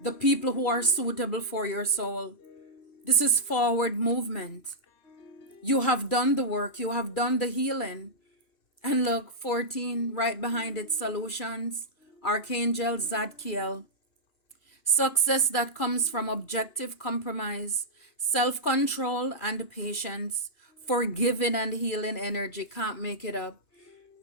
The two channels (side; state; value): right; late; 2.4 ms